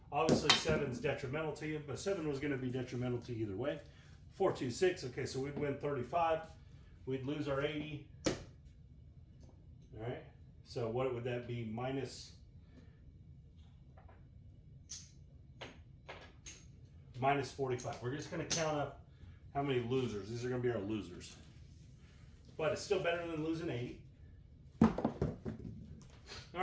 Obviously 7's detrimental to you, but 7 was going to be detrimental to you either way. 4, 2, 6. Okay, so we'd win 35. We'd lose our 80. All right. So what would that be? Minus 45. We're just going to count up how many losers. These are going to be our losers. But it's still better than losing 80. All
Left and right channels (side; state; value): both; identical; correlation 1.00